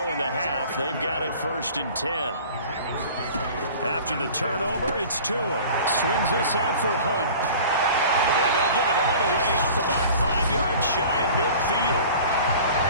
in the half. They've got it 1st and 10. After the turnover, it's Tua. Swings this out for Hunt. And they'll get it all the way up about 5 yards shy of midfield.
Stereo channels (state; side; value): inverted; both; correlation -0.43